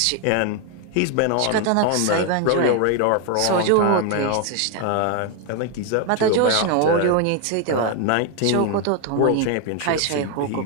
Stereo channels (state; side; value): different; both; correlation 0.01